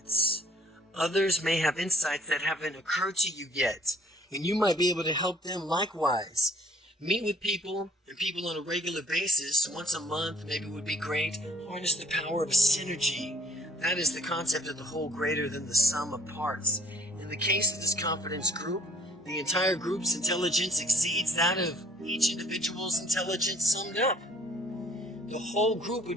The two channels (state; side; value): normal; both; correlation 0.57